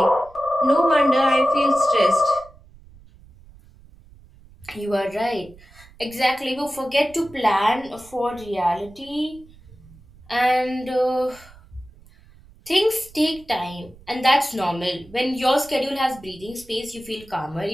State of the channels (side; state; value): right; noise; rumble, 24 dB below the sound